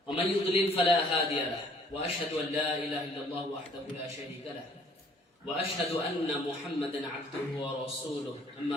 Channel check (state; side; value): normal; both; correlation 0.59